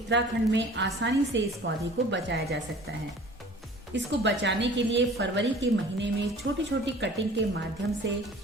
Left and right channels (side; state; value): both; normal; correlation 0.47